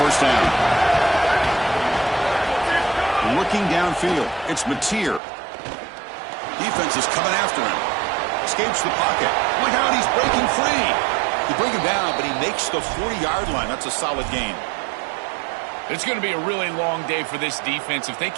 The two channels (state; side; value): drops out; left; at 5.2 s